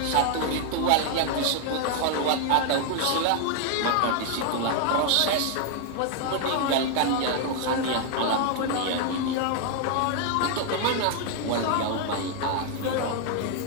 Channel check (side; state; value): both; different; correlation 0.00